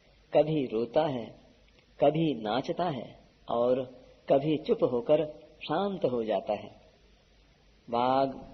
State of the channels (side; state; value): both; identical; correlation 1.00